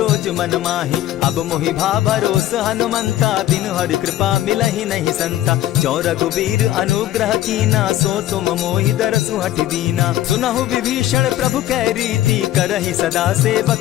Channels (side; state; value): right; quieter; 13.5 dB